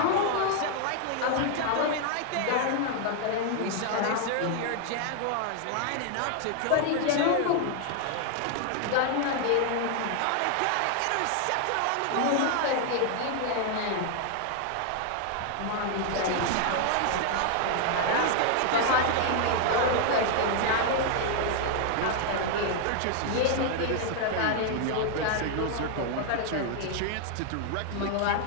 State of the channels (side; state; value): both; different; correlation 0.00